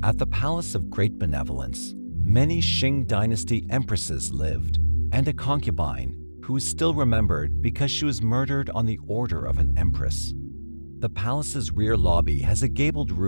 At the Palace of Great Benevolence, many Qing dynasty empresses lived, and a concubine who is still remembered because she was murdered on the order of an empress. The palace's rear lobby has a gabled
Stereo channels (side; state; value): both; inverted; correlation -1.00